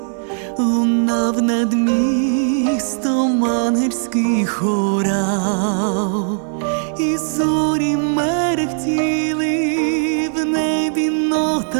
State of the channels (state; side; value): silent; left; digital silence